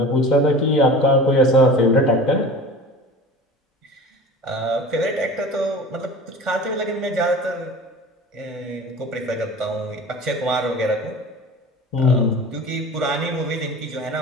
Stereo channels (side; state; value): both; normal; correlation 0.38